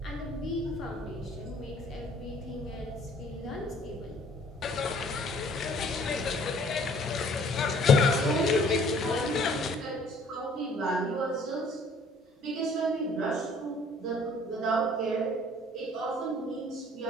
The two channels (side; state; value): both; normal; correlation 0.56